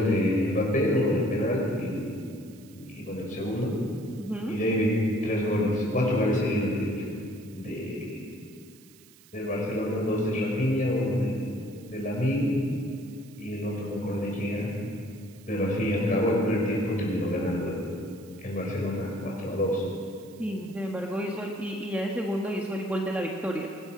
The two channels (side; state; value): right; noise; hiss, 25 dB below the sound